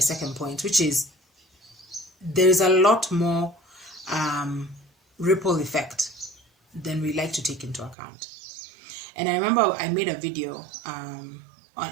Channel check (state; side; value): drops out; left; at 8.0 s